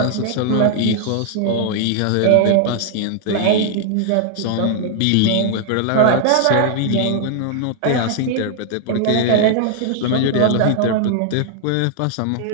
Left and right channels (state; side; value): different; both; correlation -0.01